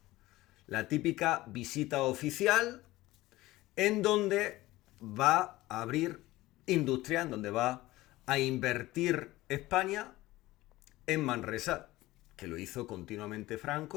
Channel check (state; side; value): quieter; right; 18.0 dB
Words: la típica visita oficial en donde va a abrir industria, en donde va a invertir España en Manresa, que lo hizo continuamente